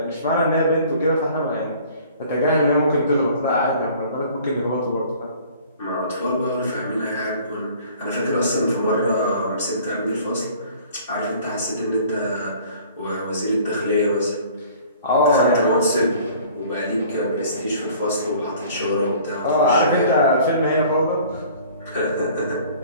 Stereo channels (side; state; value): both; inverted; correlation -0.50